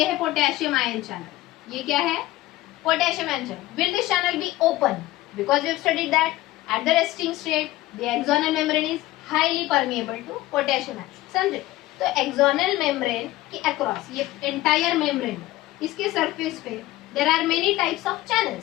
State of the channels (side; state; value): right; quieter; 16.8 dB